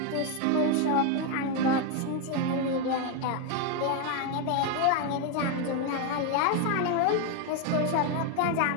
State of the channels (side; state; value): both; different; correlation 0.02